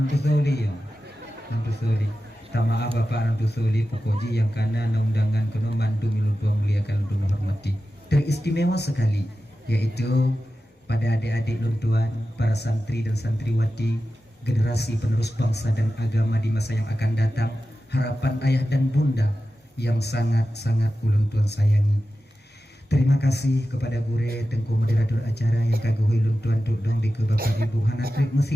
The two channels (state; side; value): normal; both; correlation 0.93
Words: soli ya nanti soli tak maaf bapak nanti soli pokok ji yang karena undangan kena mandu miluntua muliakan untuk menghormati teristimewa sekali, yaitu pada adik-adik luntuan, para santri dan santriwati, generasi penerus bangsa dan agama di masa yang akan datang, harapan ayah dan bunda yang sangat-sangat uluntuan sayangi. Terima kasih kepada Gure Tengku moderator acara yang kaguhui luntuan dudong di ke Bapak Ibu Hanatrik